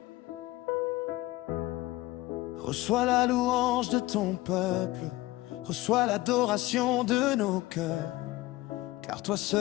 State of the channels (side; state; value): right; quieter; 18.9 dB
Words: reçois la louange de ton peuple, reçois l'adoration de nos cœurs, car toi